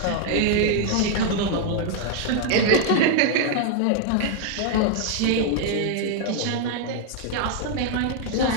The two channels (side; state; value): both; different; correlation 0.00